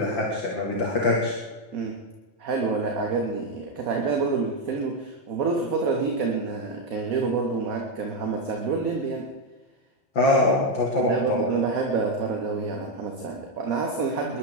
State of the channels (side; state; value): right; late; 5.8 ms